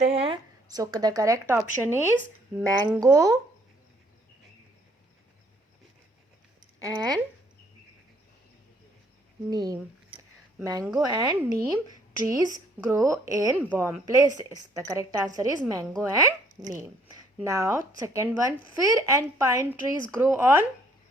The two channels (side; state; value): both; normal; correlation 0.63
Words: हैं. So the correct option is mango and neem. Mango and neem trees grow in warm places. The correct answer is mango and neem. Now, second one, fir and pine trees grow on